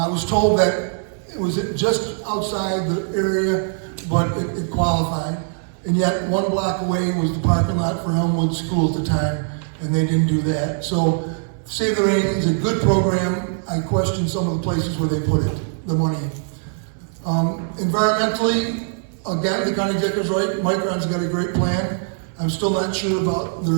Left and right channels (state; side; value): silent; left; 65 dB below the other